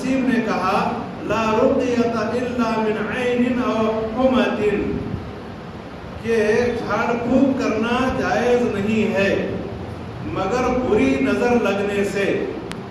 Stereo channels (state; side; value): identical; both; correlation 1.00